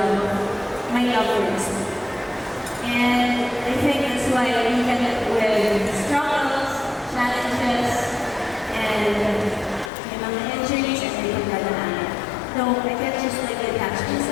my love for wrestling. And I think that's why even with struggles, challenges, and injuries, and everything like that, no, I can't just like attach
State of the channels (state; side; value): drops out; right; at 9.9 s